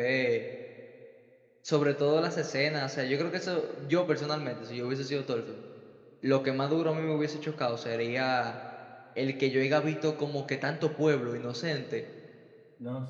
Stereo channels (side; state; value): both; identical; correlation 1.00